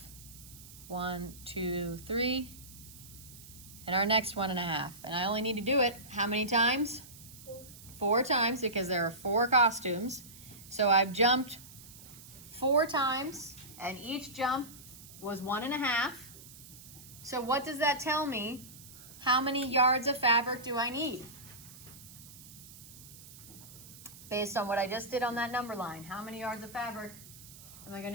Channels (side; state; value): right; noise; hiss, 18 dB below the sound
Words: 1, 2, 3, and our next 1.5. And I only need to do it how many times? 4 times, because there are 4 costumes. So I've jumped 4 times, and each jump was 1.5. So what does that tell me? How many yards of fabric do I need? Based on what I just did on that number line, how many yards of fabric am I going